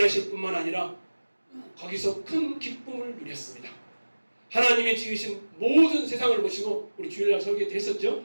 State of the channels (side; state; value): both; inverted; correlation -1.00